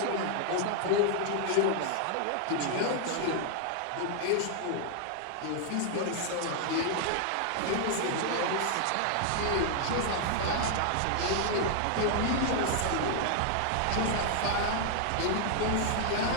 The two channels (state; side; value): different; both; correlation 0.00